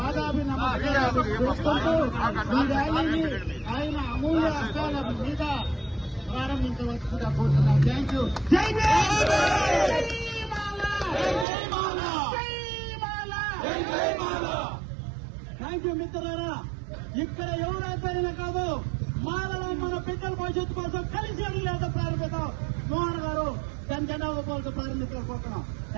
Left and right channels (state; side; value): drops out; left; at 11.5 s